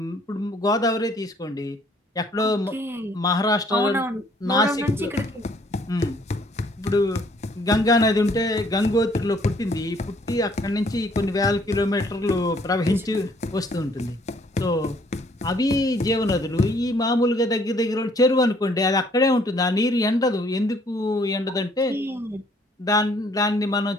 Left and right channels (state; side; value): normal; both; correlation 0.62